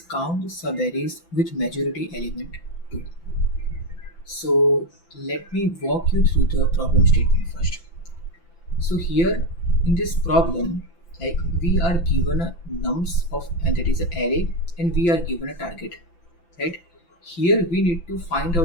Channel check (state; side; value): late; right; 5.9 ms